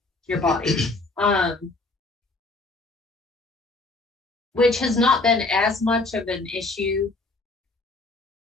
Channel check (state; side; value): quieter; right; 3.2 dB